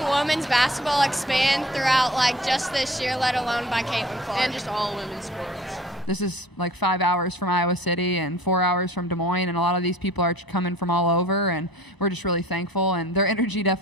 women's basketball expand throughout just this year, let alone by Caitlin Clark. And just all women's sports. This is 5 hours from Iowa City and 4 hours from Des Moines, and a lot of these people are coming from all over, and we're just really thankful, and their energy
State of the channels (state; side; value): normal; both; correlation 0.47